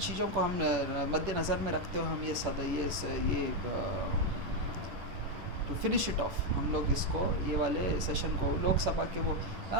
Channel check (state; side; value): late; left; 10 ms